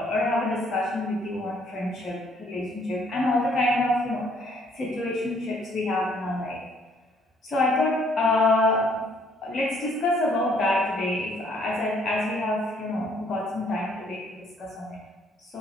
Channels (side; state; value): both; normal; correlation 0.64